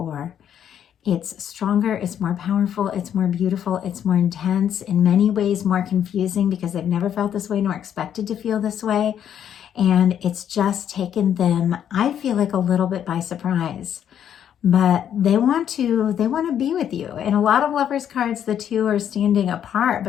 It's stronger, it's more powerful, it's more beautiful, it's more intense, in many ways more confusing because they've never felt this way nor expected to feel this way. And it's just taken them, I feel like, a little bit by surprise. But they want to be with you. In a lot of Lovers cards, the two are standing apart,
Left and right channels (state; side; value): quieter; right; 9.4 dB